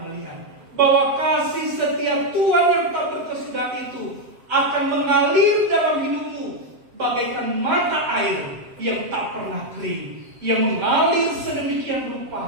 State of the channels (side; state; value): left; late; 7.6 ms